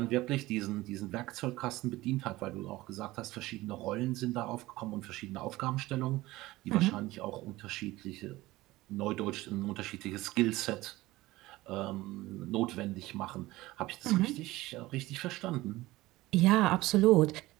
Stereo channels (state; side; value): quieter; left; 18.5 dB